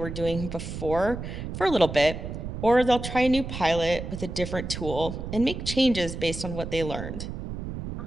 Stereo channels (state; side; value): noise; right; rumble, 7 dB below the sound